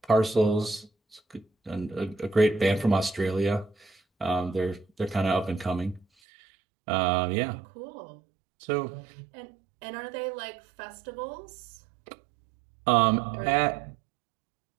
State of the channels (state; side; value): drops out; left; at 6.1 s